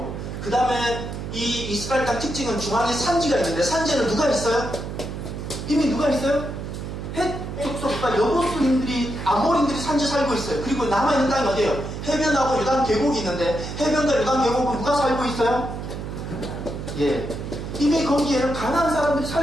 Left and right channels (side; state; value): right; noise; hum, 7 dB below the sound